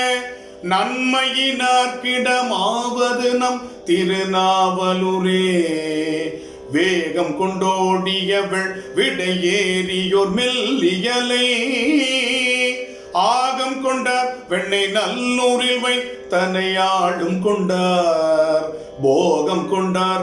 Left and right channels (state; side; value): identical; both; correlation 1.00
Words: நன்மையினார்க்கிடமாவது நம் திருநாவலூரே, வேகம் கொண்டோடியவள் விடையேறியோர் மெல்லியலை, ஆகம் கொண்டார் வெண்ணை நல்லூரில் வைத்தனையாளும் கொண்டார், போகம்